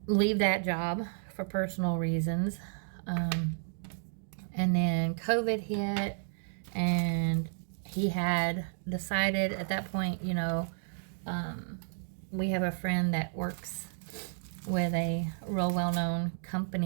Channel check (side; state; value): left; silent; digital silence